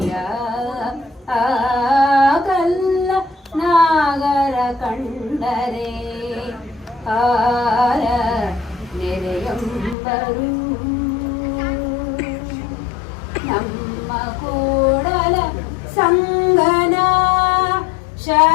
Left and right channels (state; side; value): drops out; right; at 10.0 s